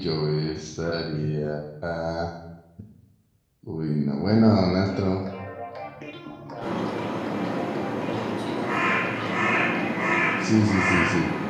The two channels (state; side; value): identical; both; correlation 1.00